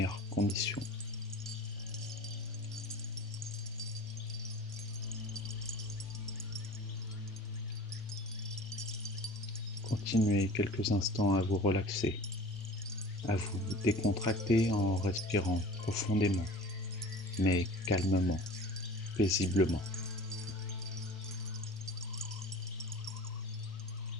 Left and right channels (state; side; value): normal; both; correlation 0.42